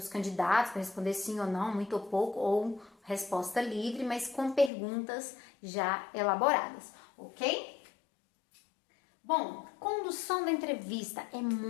candidatos, para responder sim ou não, muito ou pouco, ou resposta livre, mas com perguntas já elaboradas, ok? Bom, condução da entrevista. É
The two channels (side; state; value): right; drops out; at 4.7 s